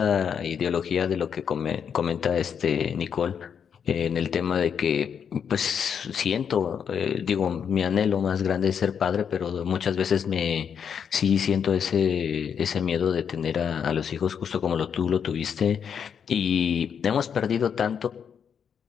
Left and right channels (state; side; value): quieter; right; 7.5 dB